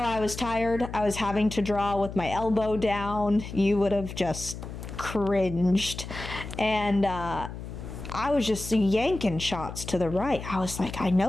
was tired. I was having to draw with my elbow down. You would have just cringed. And I was just yanking shots to the right. I was like, I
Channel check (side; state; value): left; noise; hum, 10 dB below the sound